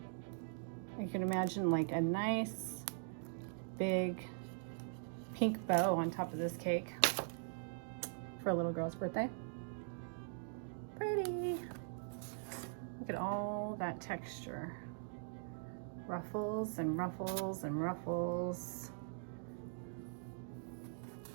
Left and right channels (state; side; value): silent; left; digital silence